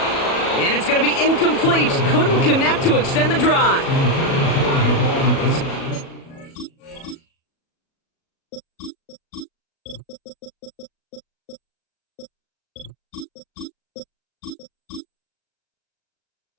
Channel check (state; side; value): late; right; 37 ms